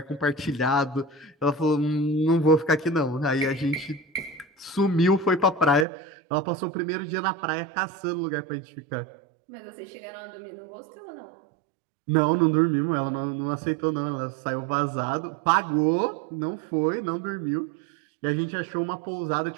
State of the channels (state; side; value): drops out; left; at 5.9 s